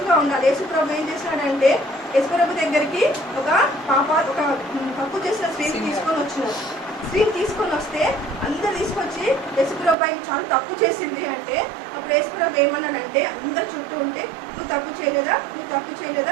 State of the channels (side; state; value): left; drops out; at 10.0 s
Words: ఉండాలి. యేసుప్రభు ఏం చేశాడంటే యేసుప్రభు దగ్గరికి ఒక తప్పు చేసిన స్త్రీని తీసుకొని వచ్చినారు. స్త్రీని తీసుకొని వస్తే అందరు తీసుకొచ్చి యేసుప్రభు ఆయన చాలా తప్పు చేసింది అంటే అప్పుడు యేసుప్రభు ఏమన్నాడంటే అందరు చుట్టూ ఉంటే నువ్వు తప్పు చేయలేదా, నువ్వు తప్పు